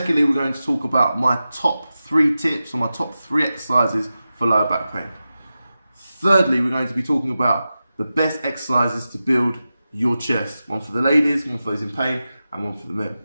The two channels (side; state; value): both; inverted; correlation -0.93